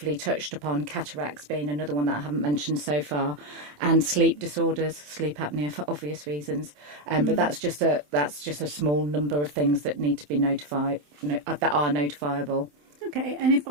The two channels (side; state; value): left; late; 27 ms